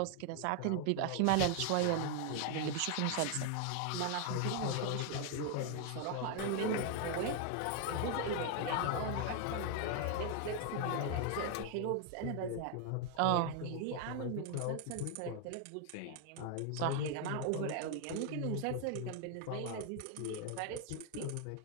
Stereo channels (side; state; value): both; different; correlation 0.00